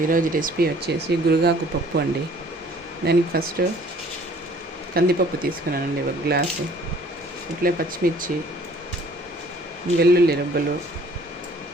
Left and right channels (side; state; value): both; normal; correlation 0.55